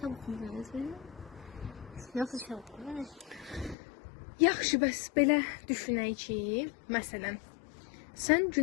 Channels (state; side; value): drops out; right; at 3.8 s